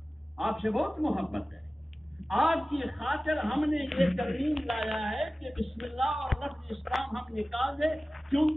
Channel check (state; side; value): normal; both; correlation 0.96